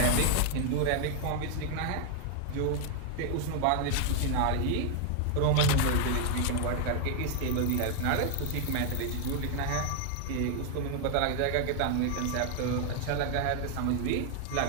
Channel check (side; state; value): both; different; correlation 0.00